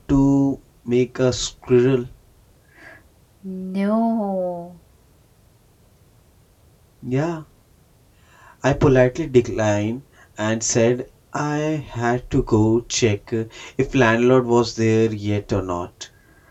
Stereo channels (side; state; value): both; identical; correlation 1.00